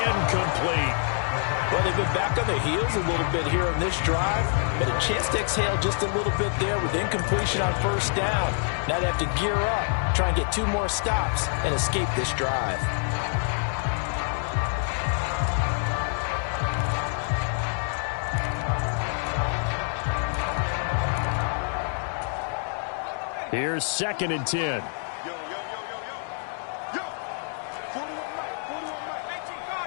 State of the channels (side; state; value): right; silent; 55 dB below the other